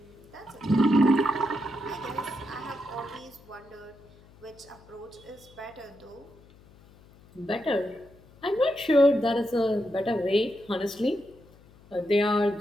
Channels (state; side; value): noise; left; hum, 25 dB below the sound